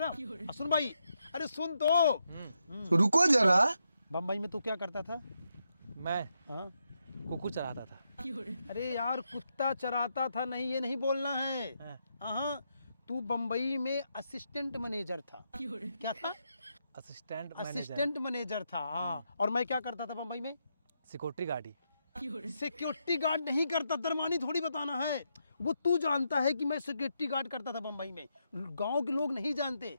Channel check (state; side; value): inverted; both; correlation -0.82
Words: सुन भाई, अरे सुन तो रुको जरा। बम्बई में तू क्या करता था? मैं हाँ? कुकुर चराता था। अरे यार कुत्ता चराता था नहीं, ये नहीं बोलना है। हाँ। हाँ, तू बम्बई में असिस्टेंट मैनेजर था। क्या था? असिस्टेंट मैनेजर था। हाँ, और मैं क्या करता था बम्बई में? Security guard. सिक्योरिटी गार्ड नहीं करता, दरमानी थोड़ी बताना है। वो तू जानता है कि मैं सिक्योरिटी गार्ड करता था बम्बई में, गांव के लोग नहीं जानते।